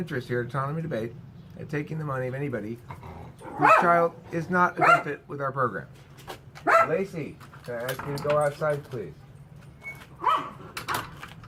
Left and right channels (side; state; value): both; identical; correlation 1.00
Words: here at Autonomy Debate at taking the money of anybody whose child is not a good fit with our program. Lacey, can I ask you to go outside, please?